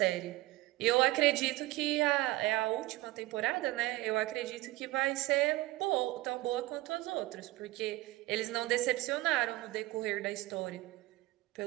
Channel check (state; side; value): quieter; left; 18.7 dB